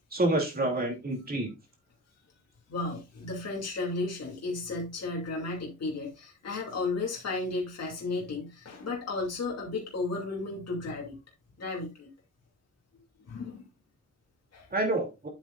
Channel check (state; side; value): normal; both; correlation 0.29